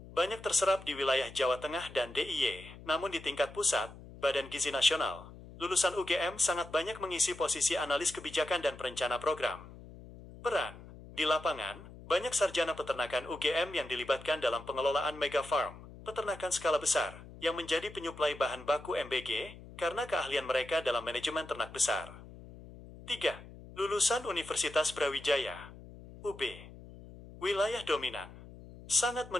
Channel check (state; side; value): noise; left; hum, 17 dB below the sound